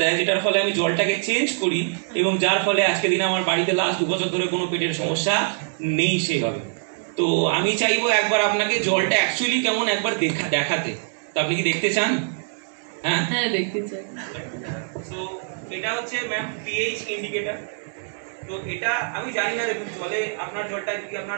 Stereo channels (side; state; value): left; silent; digital silence